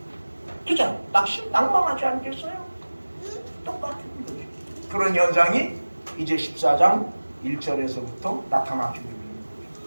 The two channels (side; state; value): both; inverted; correlation -1.00